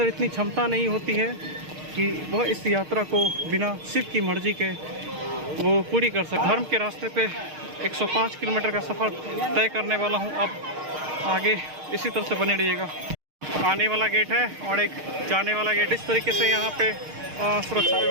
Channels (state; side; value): late; left; 6.5 ms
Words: इतनी क्षमता नहीं होती है कि वह इस यात्रा को बिना शिव की मर्जी के वो पूरी कर सके। धर्म के रास्ते पे 105 किलोमीटर का सफ़र तय करने वाला हूँ। अब आगे इसी तरह से बने रहिएगा। आने वाला गेट है और एक जाने वाला गेट। इस तरीके से यहाँ पे सुरक्षा